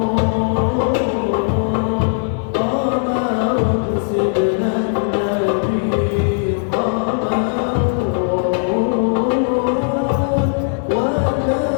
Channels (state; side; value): silent; right; digital silence